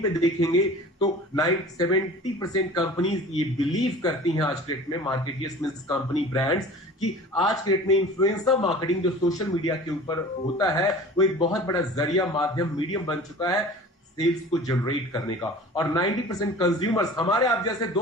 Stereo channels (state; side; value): normal; both; correlation 0.41